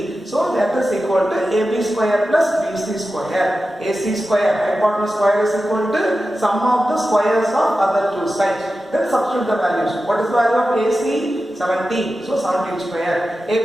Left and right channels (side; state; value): both; normal; correlation 0.93